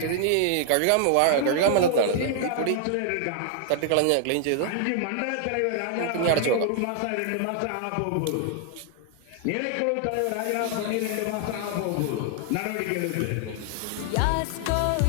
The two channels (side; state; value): both; different; correlation 0.00